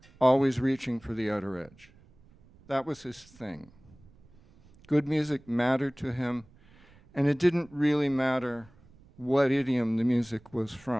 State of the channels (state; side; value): noise; right; rumble, 27 dB below the sound